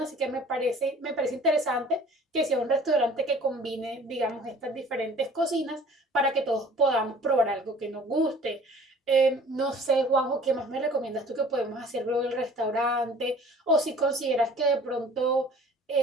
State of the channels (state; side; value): normal; both; correlation 0.49